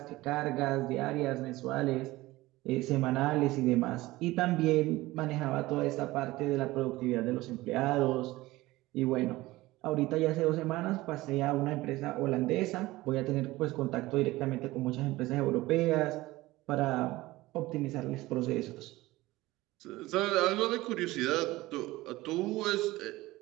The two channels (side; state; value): left; quieter; 18.7 dB